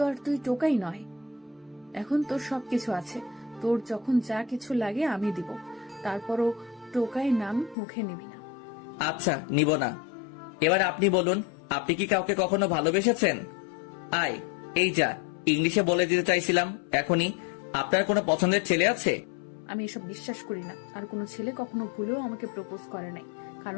আর তুই টোকাই নয়, এখন তোর সবকিছু আছে। তোর যখন যা কিছু লাগে আমি দিব, তারপরও টোকাই নাম মুখে নিবি না। আচ্ছা, নিব না। এবার আপনি বলুন, আপনি কি কাউকে কখনো ভালোবেসেছেন? আয়, এই যা, ইংলিশে বলে দিতে চাইছিলাম এখনই। আপনার কোনো পছন্দের ছেলে আছে? আমি এসব বিশ্বাস করি না। আর কোনো ছেলে কখনো ভুলেও আমাকে প্রপোজ করে নাই,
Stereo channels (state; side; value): drops out; right; at 7.8 s